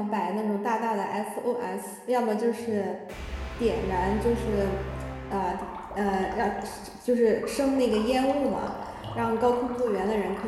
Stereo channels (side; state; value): both; identical; correlation 1.00